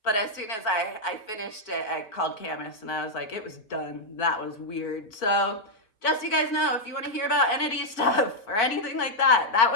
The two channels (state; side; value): late; right; 4.5 ms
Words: But as soon as I finished it, I called Camus, and I was like, it was done. That was weird. So just so you guys know, if you want to hear about entity stuff or anything like that, that